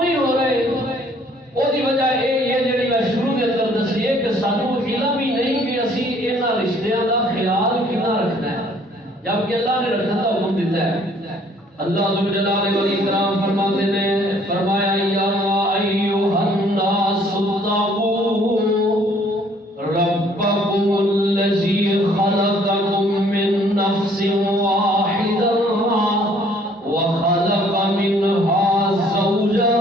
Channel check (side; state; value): both; normal; correlation 0.60